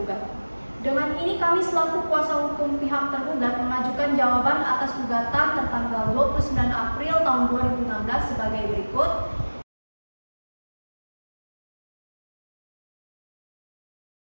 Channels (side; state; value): both; inverted; correlation -1.00